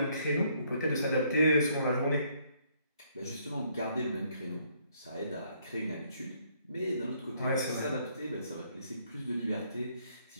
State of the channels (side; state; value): both; inverted; correlation -0.69